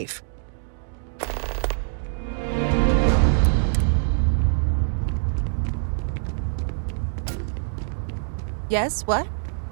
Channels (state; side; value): silent; left; digital silence